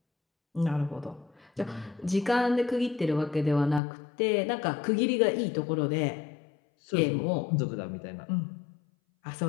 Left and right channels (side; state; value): right; drops out; at 3.8 s